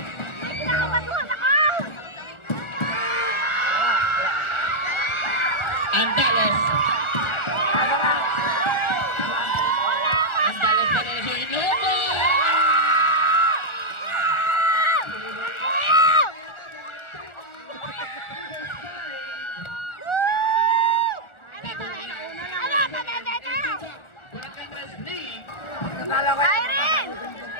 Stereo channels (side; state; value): right; late; 1.4 ms